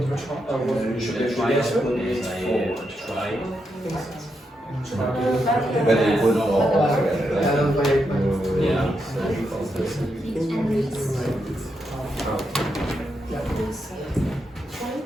You should Try yes. try. But it would all yeah.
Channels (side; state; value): both; normal; correlation 0.83